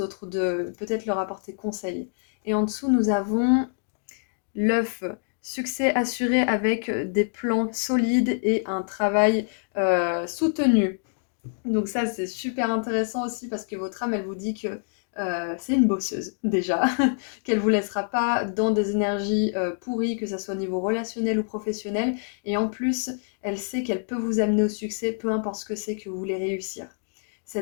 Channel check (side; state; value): right; silent; digital silence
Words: de peut-être leur apporter conseil. Et en dessous, nous avons l'œuf, succès assuré avec des plans solides et un travail soutenu. Donc ça, c'est super intéressant aussi parce que votre âme, elle vous dit que c'est une bosseuse déjà, qu'elle vous laissera pas dans des énergies pourries, que ça soit au niveau relationnel ou professionnel. Et en plus, elle sait qu'elle peut vous amener au succès, peu importe ce que c'est que vous voulez réussir.